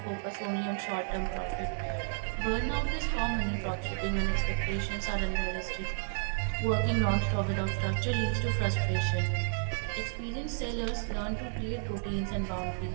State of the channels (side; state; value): left; silent; 57 dB below the other